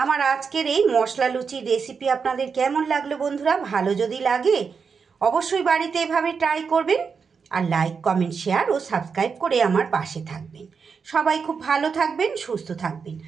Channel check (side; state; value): left; quieter; 5.7 dB